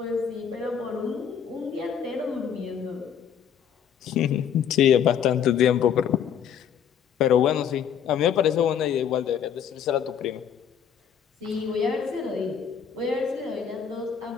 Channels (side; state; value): right; quieter; 8.2 dB